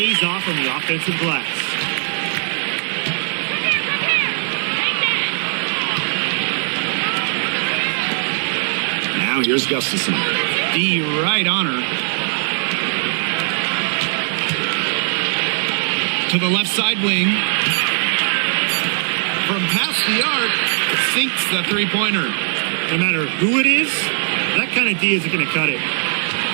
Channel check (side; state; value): left; silent; 62 dB below the other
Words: off on the offensive glass. Now here's Gustafson. D right on her. To the left side wing. From past the arc, sinks the 3-pointer. No matter who it is, that kind of D isn't going to cut it.